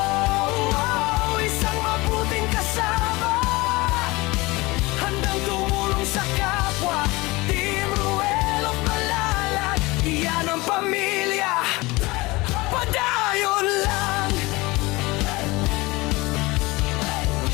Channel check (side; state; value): right; quieter; 22.4 dB